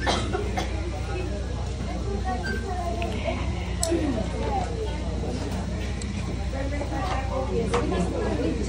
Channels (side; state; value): both; identical; correlation 1.00